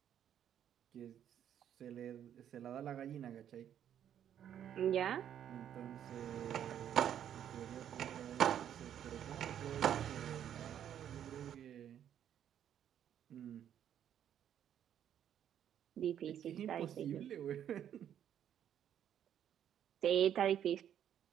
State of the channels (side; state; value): left; quieter; 9.9 dB